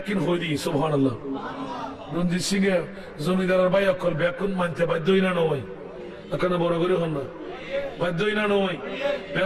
হই দি সুবহানাল্লাহ রঞ্জিত সিং এর জমিদারের ভাই অকল ব্যাকুন মানতে বাধ্যই না নয় এখানে বড় করে হন না বাধ্যই না নয়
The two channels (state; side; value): identical; both; correlation 1.00